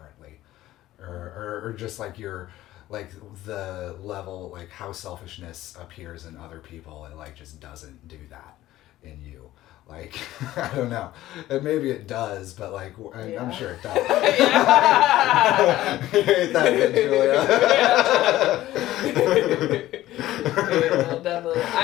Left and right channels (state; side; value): quieter; right; 15.1 dB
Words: or just like you're like the level, like how selfishness appears in other people, it like just doesn't do that in you. Like, I don't know. And maybe it does, but like, I'm sure it does. You hate that bit, Julia. Yeah, definitely.